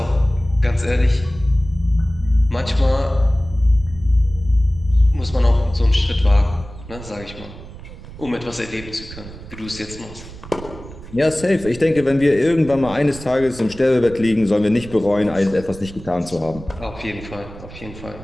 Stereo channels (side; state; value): right; noise; rumble, 15 dB below the sound